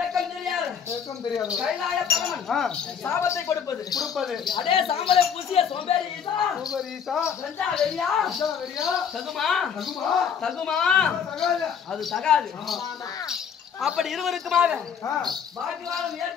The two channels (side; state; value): right; quieter; 7.5 dB